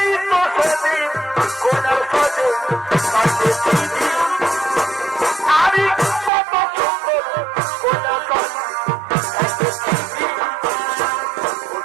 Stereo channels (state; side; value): drops out; left; at 6.3 s